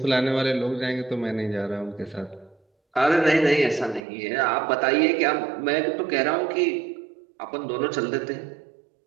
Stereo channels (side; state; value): left; drops out; at 4.0 s